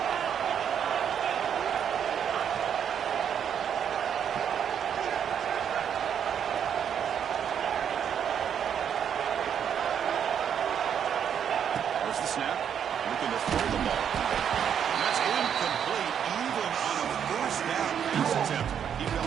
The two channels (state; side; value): quieter; left; 8.4 dB